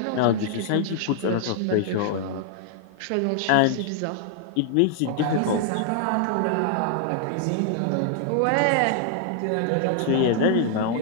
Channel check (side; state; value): both; different; correlation 0.00